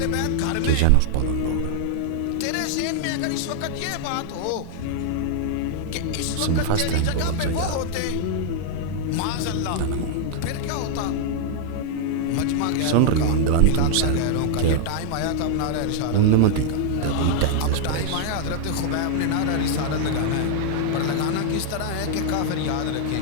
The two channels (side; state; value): both; different; correlation -0.01